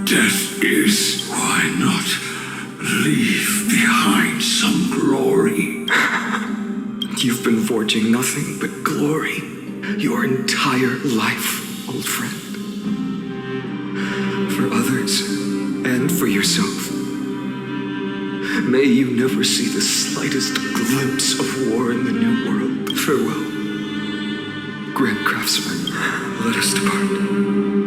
death is, why not leave behind some glory? You've been forging nothing but glory your entire life, old friend. For others, and for yourself. May you never see the slightest glimpse of war in the New World. Farewell, Grand Craftsman. Let us depart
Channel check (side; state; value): both; identical; correlation 1.00